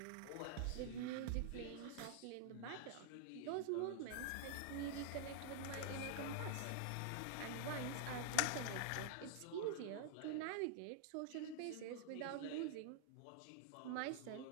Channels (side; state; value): both; different; correlation -0.01